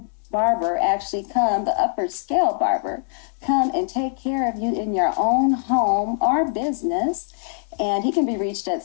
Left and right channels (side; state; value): right; silent; digital silence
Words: barber actually come, the upper scale barber, come and take care of you in your own home or business. And he can be reached